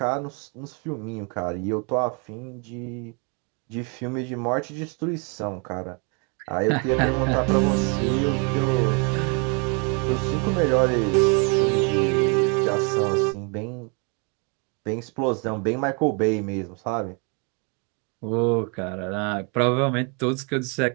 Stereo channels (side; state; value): left; quieter; 35.1 dB